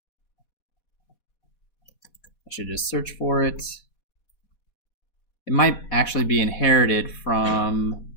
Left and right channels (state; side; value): late; right; 4.2 ms